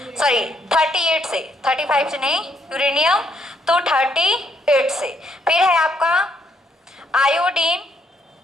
सॉरी 38 से, 35 से नहीं, यूरेनियम तो 38 से। फिर है आपका आयोडीन,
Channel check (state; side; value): normal; both; correlation 0.72